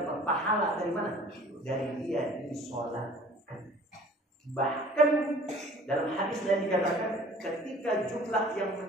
pahala dari mana? Dari dia disolatkan. Bahkan dalam hadis yang dikatakan, ketika jumlah yang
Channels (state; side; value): normal; both; correlation 0.49